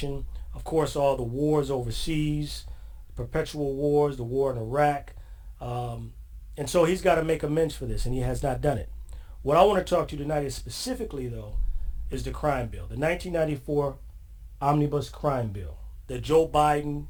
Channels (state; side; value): identical; both; correlation 1.00